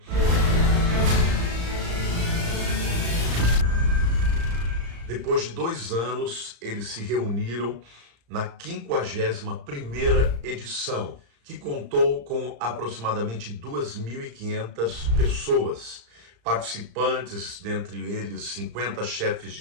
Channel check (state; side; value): late; left; 35 ms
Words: Depois de 2 anos, eles se reuniram na 51ª edição, que contou com aproximadamente 2.500 pessoas, participantes, dentre eles 50 chefes de